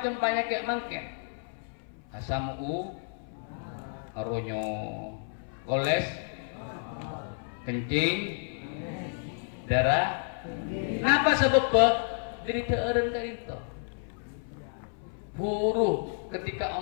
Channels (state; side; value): silent; right; 57 dB below the other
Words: penyakit mangke. Asam ronyo, koles, kencing, darah. Napa sebabnya? Dari teeren ka itu. Buruh ketika